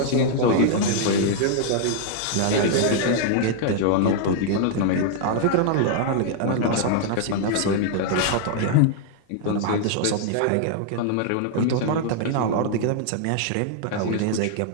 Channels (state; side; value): different; both; correlation 0.00